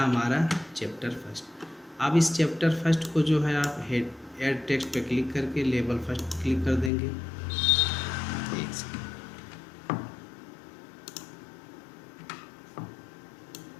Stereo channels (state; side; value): drops out; right; at 6.9 s